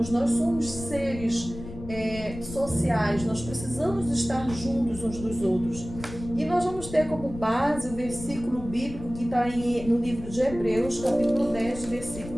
somos seres sociais, nós precisamos estar juntos uns dos outros. E nós vamos ter como base o versículo bíblico que está no livro de Hebreus, capítulo 10,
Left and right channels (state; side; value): noise; left; rumble, 13 dB below the sound